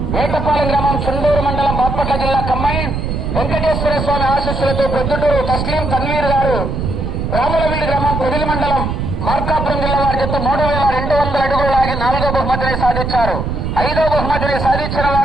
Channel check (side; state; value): right; noise; rumble, 3 dB below the sound